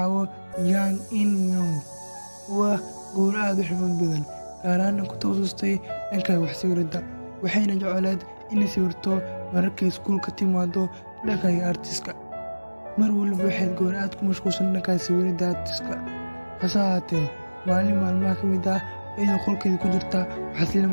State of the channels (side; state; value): both; inverted; correlation -1.00